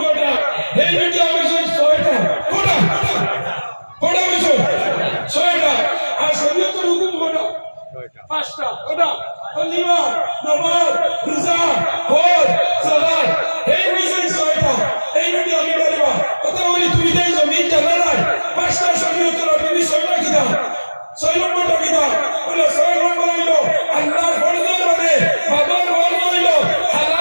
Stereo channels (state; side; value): inverted; both; correlation -1.00